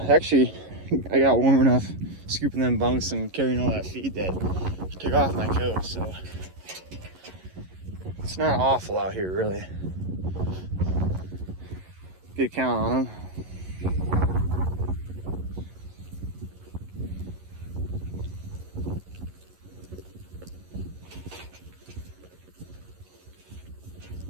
I got warm enough scooping them bunks and carrying all that feed that took off my coat, so it's not awful out here, really. Good count on them.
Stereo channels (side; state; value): left; late; 11 ms